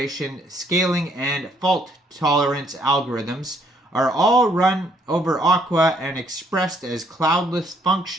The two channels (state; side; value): normal; both; correlation 0.67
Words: scaling, and fault tolerance algorithms are all run over Aqua and expressed as cloudless